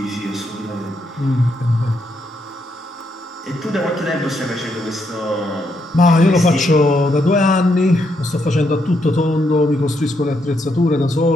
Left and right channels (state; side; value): normal; both; correlation 0.78